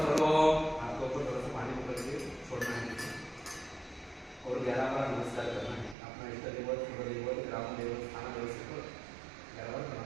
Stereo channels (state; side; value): drops out; left; at 6.0 s